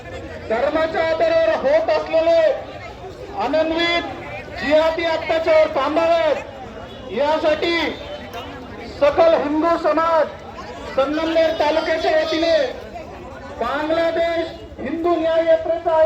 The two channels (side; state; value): both; identical; correlation 1.00